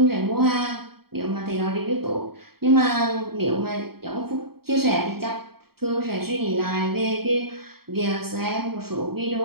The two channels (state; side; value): late; left; 0.95 ms